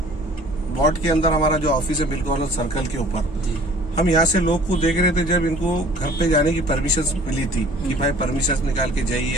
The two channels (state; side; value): normal; both; correlation 0.50